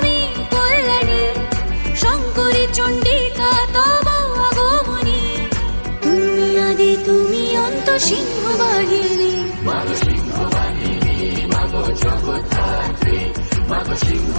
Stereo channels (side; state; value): both; inverted; correlation -1.00